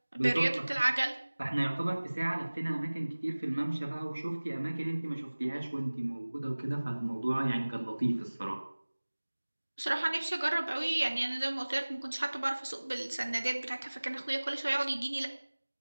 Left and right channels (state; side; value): inverted; both; correlation -1.00